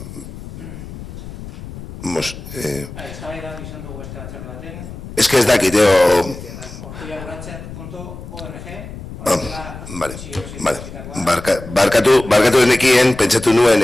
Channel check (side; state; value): left; noise; rumble, 12 dB below the sound